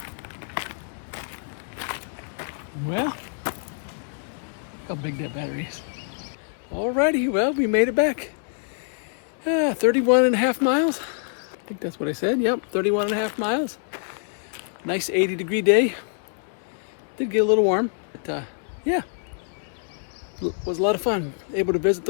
Well, look how big that battery is. Alrighty, well, we made it back. 31.5 miles. I think that's what I said. Yep, 31.5 miles. Nice 80-degree day. Did get a little warm, but yeah. It was a lot of fun, able to visit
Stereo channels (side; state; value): right; silent; digital silence